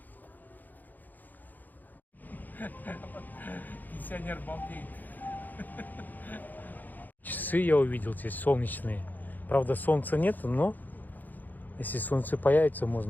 Пенсионер балдеет. Часы я увидел здесь солнечные. Правда, солнца нет, но если солнце появится,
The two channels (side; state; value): right; late; 0.085 ms